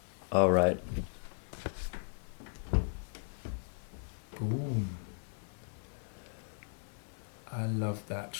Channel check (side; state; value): right; silent; digital silence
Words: All right. Boom. I love that